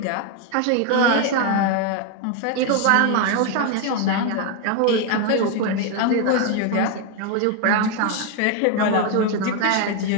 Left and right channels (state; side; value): different; both; correlation 0.01